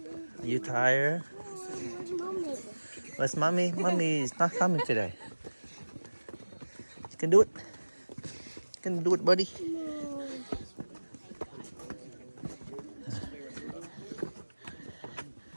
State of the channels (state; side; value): inverted; both; correlation -1.00